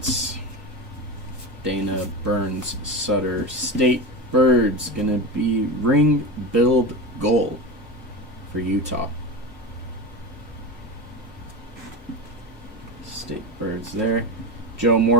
Dana, Burns, Sutter, State Birds, gonna be ring build goal for Utah. State Birds there. Joe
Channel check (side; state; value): both; normal; correlation 0.23